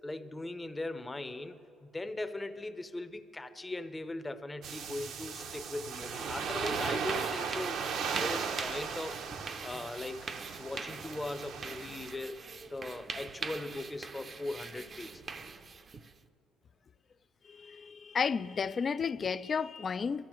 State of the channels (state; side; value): normal; both; correlation 0.78